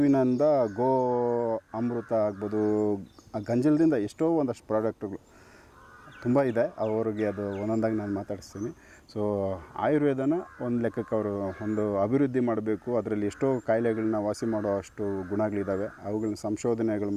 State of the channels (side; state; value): both; identical; correlation 1.00